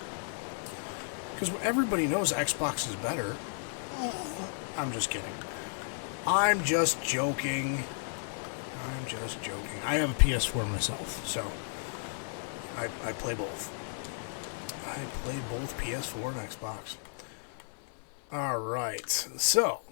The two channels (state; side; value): silent; right; digital silence